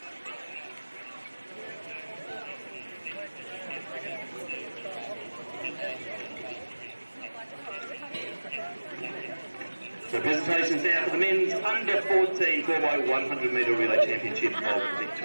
So presentations now for the men's under 14 4x100 metre relay championship of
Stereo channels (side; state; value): both; inverted; correlation -1.00